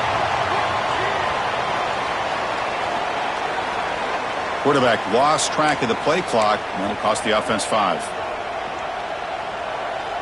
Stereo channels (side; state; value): both; identical; correlation 1.00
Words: Quarterback lost track of the play clock, and that'll cost the offense 5.